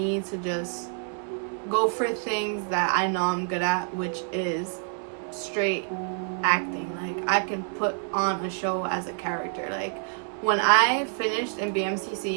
to just go for things that I know I'm good at, which is straight acting. Like, I can put on a show as a character. Like, when I finished in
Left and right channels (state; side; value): silent; left; 60 dB below the other